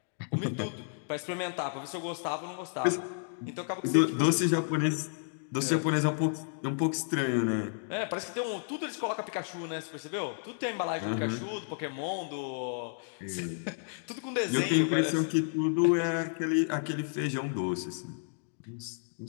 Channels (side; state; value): right; silent; digital silence